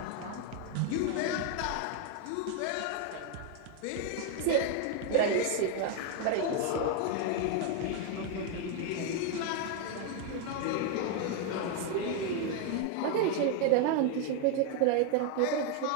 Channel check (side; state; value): both; different; correlation 0.01